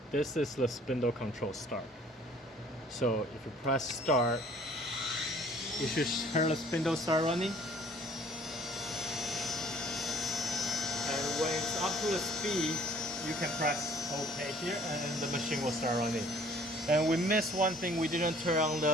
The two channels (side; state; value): both; normal; correlation 0.55